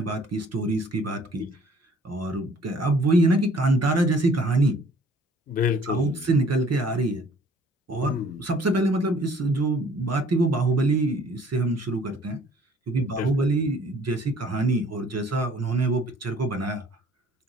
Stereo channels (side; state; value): both; normal; correlation 0.56